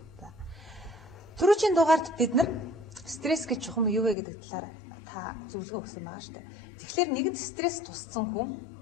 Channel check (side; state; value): right; drops out; at 4.2 s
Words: Түрүүчийн дугаард бид нар стресс гэж чухам юу вэ гэдэг талаар та зөвлөгөө өгсөн байгаа шүү дээ. Тэгэхээр нэгэнт стресс тусцсан хүн